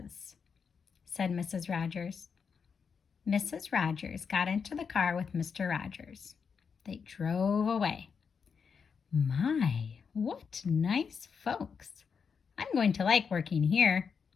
said Mrs. Rogers. Mrs. Rogers got into the car with Mr. Rogers. They drove away. My, what nice folks. I'm going to like working here,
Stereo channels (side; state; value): right; quieter; 6.1 dB